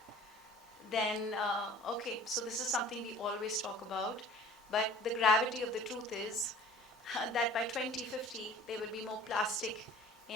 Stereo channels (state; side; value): normal; both; correlation 0.46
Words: Then okay, so this is something we always talk about, but the gravity of the truth is that by 2050 there will be more plastic